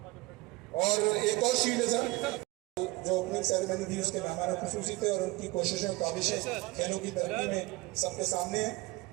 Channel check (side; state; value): left; quieter; 22.0 dB